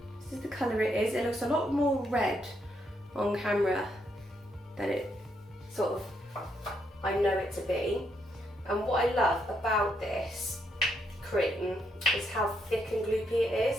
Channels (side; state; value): both; normal; correlation 0.77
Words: This is the colour it is. It looks a lot more red on camera than it sort of I know it to be. And what I love about this cream is how thick and gloopy it